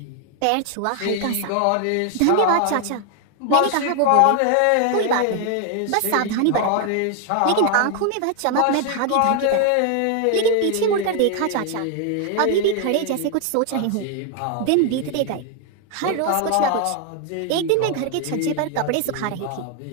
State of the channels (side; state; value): both; different; correlation 0.01